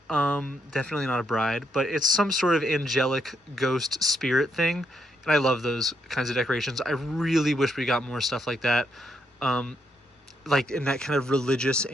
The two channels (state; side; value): normal; both; correlation 0.77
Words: Definitely not a bride, but it's some sort of angelic ghost spirit thing. And I love those kinds of decorations. I really wish we got more stuff like that. Like in that kind of religious,